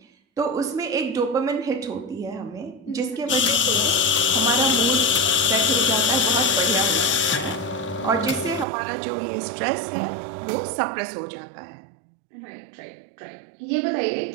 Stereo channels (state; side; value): drops out; left; at 8.7 s